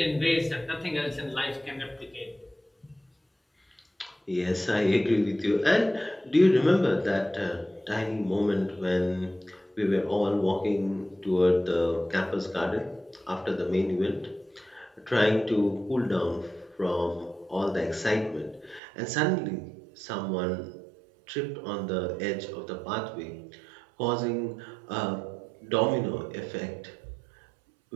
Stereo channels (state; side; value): drops out; left; at 18.8 s